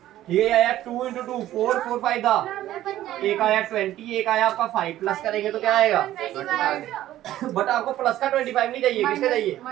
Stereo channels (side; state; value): left; quieter; 13.7 dB